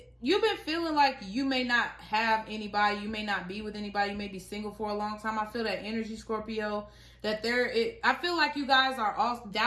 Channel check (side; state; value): both; identical; correlation 1.00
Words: you may not have anybody, you may not be with anybody, you may be single for a long time. I feel that energy, Scorpio, that I feel like you guys are all